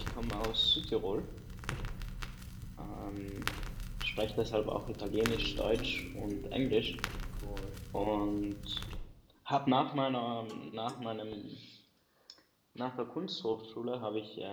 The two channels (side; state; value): both; identical; correlation 1.00